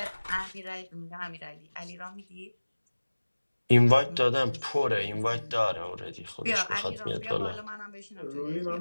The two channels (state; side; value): inverted; both; correlation -1.00